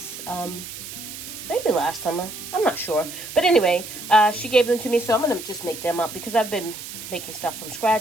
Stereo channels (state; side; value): noise; right; hiss, 11 dB below the sound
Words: maybe last summer, I'm not sure, but anyway, she gave them to me, so I'm gonna just make them up because I've been making stuff from